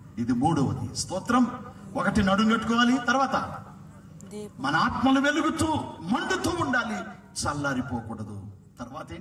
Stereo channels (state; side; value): identical; both; correlation 1.00